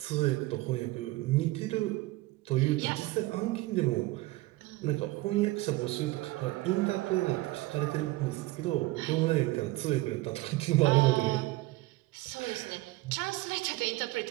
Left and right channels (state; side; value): quieter; left; 19.7 dB